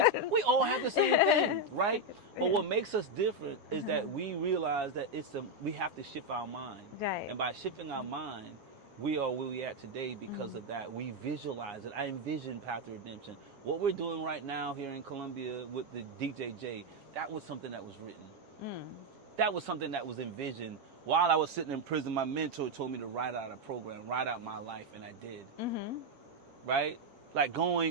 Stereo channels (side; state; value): left; late; 7.3 ms